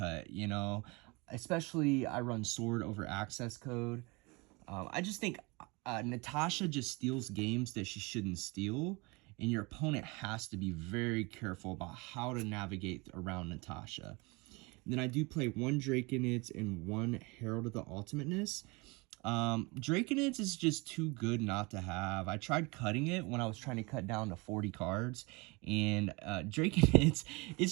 you know, especially I run Sword over Access Code. I just think Natasha just steals games that she shouldn't steal, and your opponent has to be very careful about how to navigate around Natasha. And then I do play 1 Draconids and 1 Herald of the Ultimateness. Draconids is just too good not to have. I tried cutting it when I was trying to cut down to 40 cards, and Draconids,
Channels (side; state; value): left; quieter; 26.8 dB